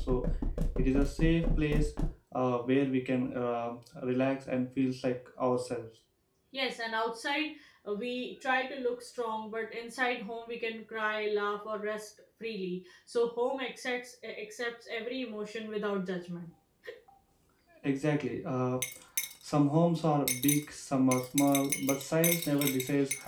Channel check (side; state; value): both; identical; correlation 1.00